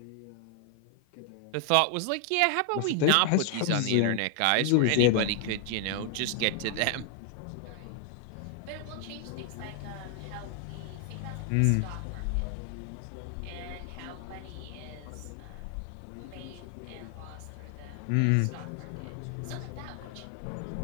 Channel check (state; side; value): different; both; correlation 0.00